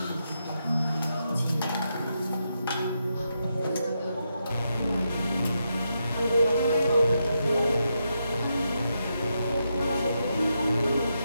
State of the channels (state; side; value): inverted; both; correlation -0.83